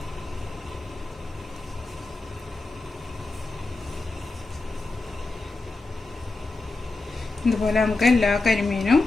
ഇതുപോലെ നമുക്ക് എല്ലാ കരിമീനും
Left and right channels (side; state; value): right; quieter; 3.3 dB